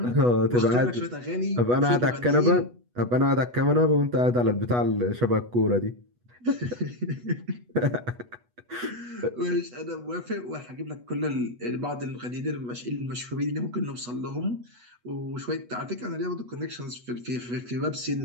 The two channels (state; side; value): late; left; 8.2 ms